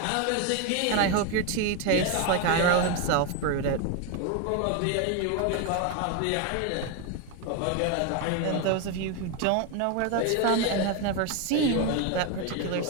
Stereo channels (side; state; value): both; different; correlation 0.02